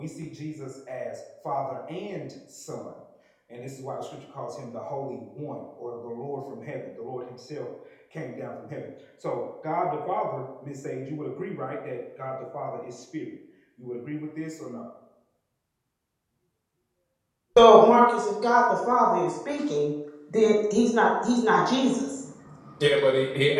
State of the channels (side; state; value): both; identical; correlation 1.00